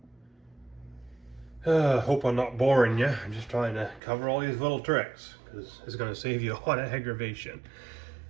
Hope I'm not boring you. I'm just trying to cover all these little tricks because it's going to save you a lot of aggravation.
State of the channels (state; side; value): drops out; left; at 4.0 s